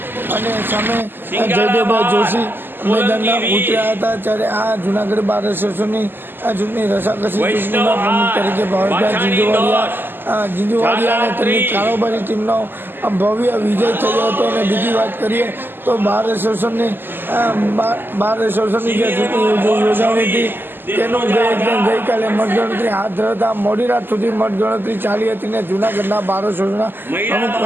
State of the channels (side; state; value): left; late; 0.096 ms